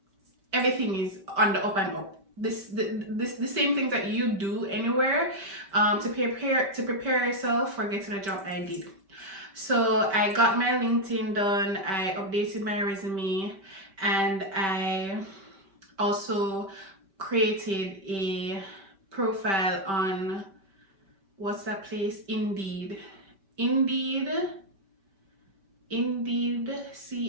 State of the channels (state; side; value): late; left; 5.2 ms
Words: is on the up and up. The same things that you do anywhere to prepare yourself for getting a job, I did. So I got my LinkedIn done, I updated my resume, and I also created a profile on, what's that place? Indeed,